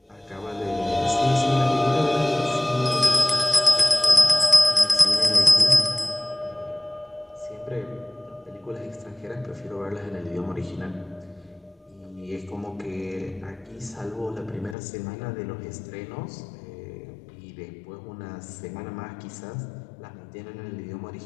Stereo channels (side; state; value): right; drops out; at 14.8 s